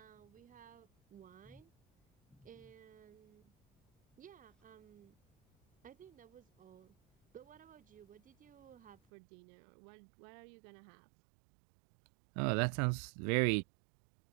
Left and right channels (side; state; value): left; drops out; at 9.0 s